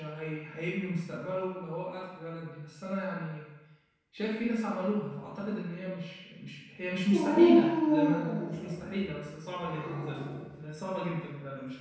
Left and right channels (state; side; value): identical; both; correlation 1.00